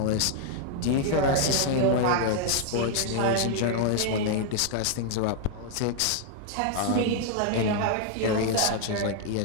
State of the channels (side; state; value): both; different; correlation 0.00